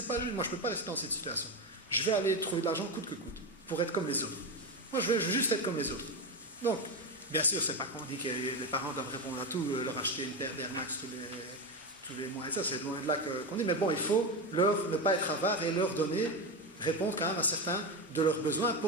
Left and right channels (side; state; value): both; normal; correlation 0.15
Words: pas juste, moi je ne peux pas rester dans cette situation. Je vais aller trouver de l'argent coûte que coûte, pour être comme les autres. Moi je veux juste être comme les autres. Donc, bien sûr, c'est pas qu'on dit que les parents doivent répondre à tout, leur acheter une paire d'Air Max tous les mois, et ça, c'est loin de là qu'on dit, mais bon, il faut ne pas être avare et leur donner, répondre quand même à certains de leurs besoins